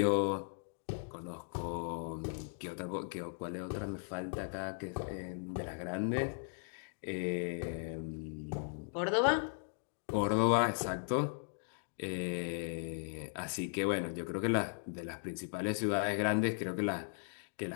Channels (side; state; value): right; silent; digital silence